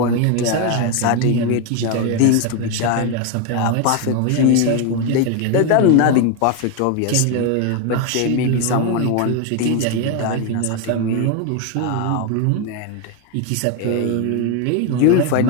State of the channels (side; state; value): both; different; correlation 0.01